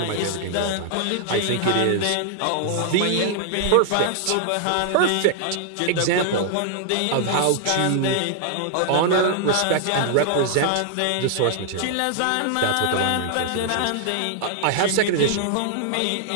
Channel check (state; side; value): different; both; correlation -0.01